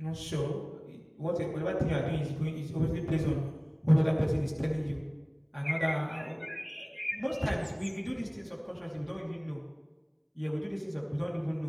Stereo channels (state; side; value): identical; both; correlation 1.00